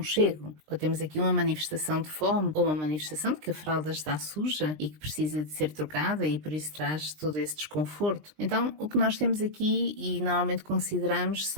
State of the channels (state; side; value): late; left; 20 ms